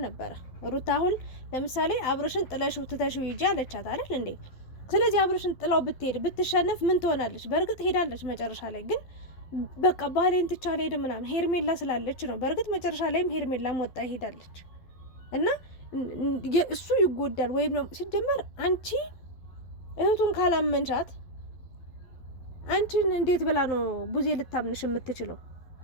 ነበረ። ሩታ አሁን ለምሳሌ አብርሽን ጥለሽ ትተሽ ሂጂ አለቻት አይደል እንዴ? ስለዚህ አብርሽን ጥላው ብትሄድ ብትሸነፍ ምን ትሆናለች? በእርግጥ ሄዳለች መጨረሻ ላይ ግን በቃ ባሌን ትቻ ሄድ ምናምን ሄርሜላ ስላለች ነው። በእርግጥ መጨረሻ ላይም ሄርሜላም ወጣ ሄዳለች እና እሱ ይጎዳል ወይም ነው ሲጀመር አንቺ እህቱን ካላመንሻት አንቺን እንዴት ብላ ነው ቡዜ ልታምንሽ የምትችለው?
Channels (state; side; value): late; right; 12 ms